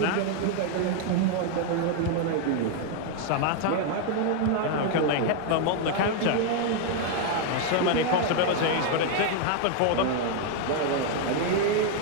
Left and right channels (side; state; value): both; different; correlation 0.00